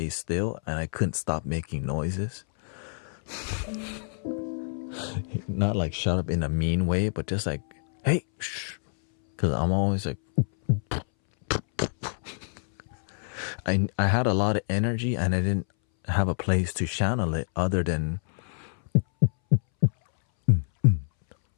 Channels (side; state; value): right; silent; 60 dB below the other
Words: still and I couldn't stop making noises. Not like shut up in a mean way, but just like, hey, shh. Because I'm always like, I had a lot of energy and I didn't have a place to channel it other than